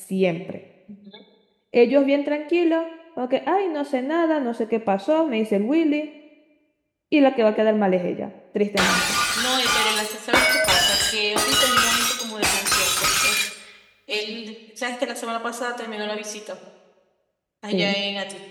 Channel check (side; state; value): both; identical; correlation 1.00